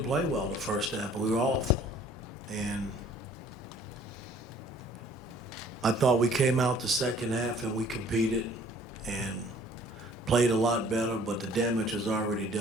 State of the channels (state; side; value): normal; both; correlation 0.55